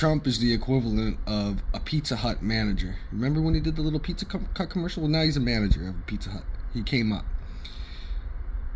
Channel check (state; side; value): identical; both; correlation 1.00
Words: is the equivalent of a Pizza Hut manager. Remember when he did the little Pizza Hut commercial? Well, now he's a manager of Pizza Hut. He came up.